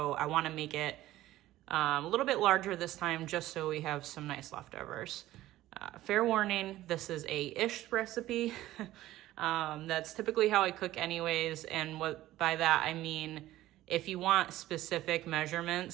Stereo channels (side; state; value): left; quieter; 15.2 dB